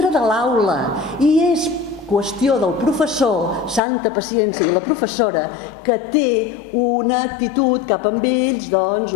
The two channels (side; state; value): right; drops out; at 3.8 s